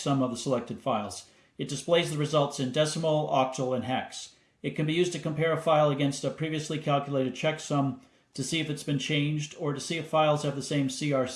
of the selected files. It displays the results in decimal, octal, and hex. It can be used to compare a file against a previously calculated checksum to see if it's been changed, or to see if files have the same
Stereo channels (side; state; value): both; identical; correlation 1.00